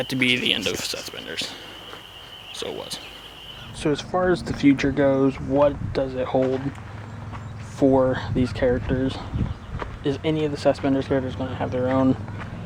to be the end of Sethspenders. So it was. So as far as the future goes, what does it hold for these characters? Is any of the Sethspenders characters going to have their own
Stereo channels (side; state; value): both; identical; correlation 1.00